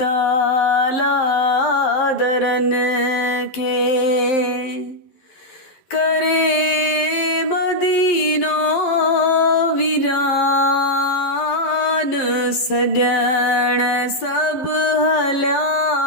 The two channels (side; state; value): right; late; 11 ms